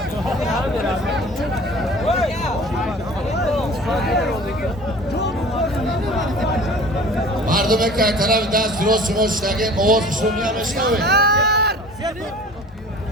мардуме ки тарафи даст дроз шумо шидагем овозашро мешнавед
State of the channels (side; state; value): both; normal; correlation 0.44